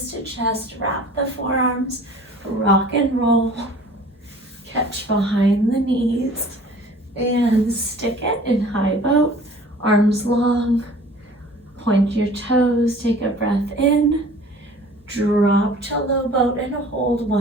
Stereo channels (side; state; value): both; normal; correlation 0.47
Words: to chest, wrap the forearms, rock and roll. Catch behind the knees and stick it in high boat, arms long. Point your toes, take a breath in, drop to low boat and hold.